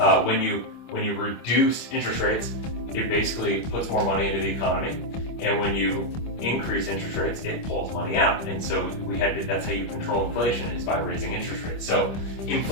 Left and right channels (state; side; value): late; right; 25 ms